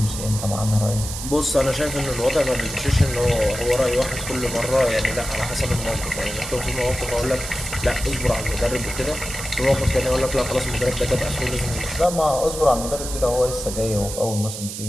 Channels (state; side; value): noise; right; hiss, 8 dB below the sound